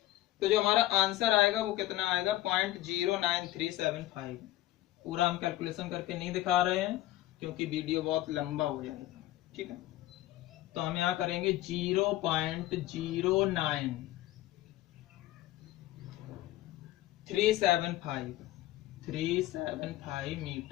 तो जो हमारा आंसर आएगा वो कितना आएगा? 0.09375। पूरा हम कैलकुलेशन करके नहीं दिखा रहे हैं क्योंकि वीडियो बहुत लंबा हो जाएगा। ठीक है, तो हम यहां करेंगे 0.09375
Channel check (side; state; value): right; quieter; 15.8 dB